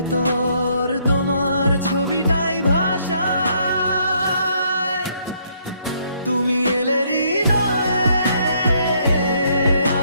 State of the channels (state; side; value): inverted; both; correlation -0.69